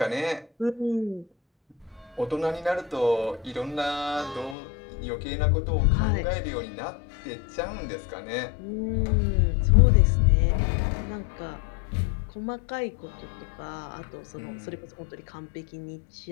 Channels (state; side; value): drops out; right; at 4.5 s